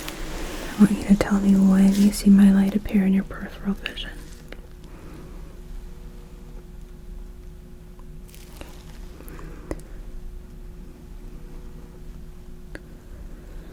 want you to tell me when you see my light appear in your peripheral vision.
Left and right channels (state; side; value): identical; both; correlation 1.00